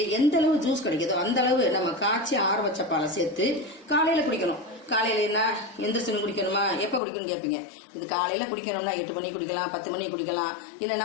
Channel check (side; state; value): right; drops out; at 7.0 s